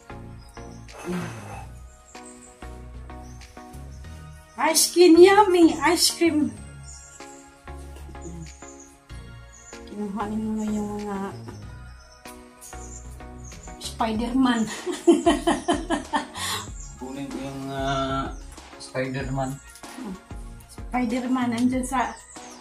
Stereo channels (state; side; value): identical; both; correlation 1.00